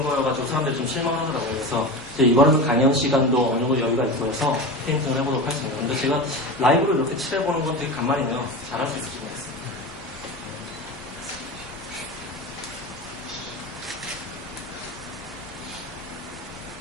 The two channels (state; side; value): normal; both; correlation 0.26